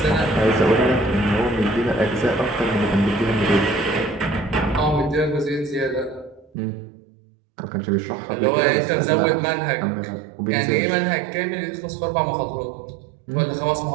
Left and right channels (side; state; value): left; drops out; at 6.5 s